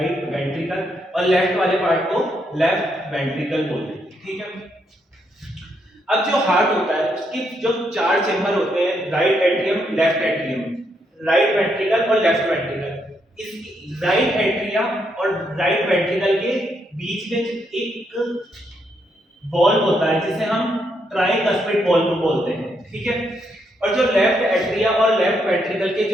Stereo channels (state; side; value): normal; both; correlation 0.77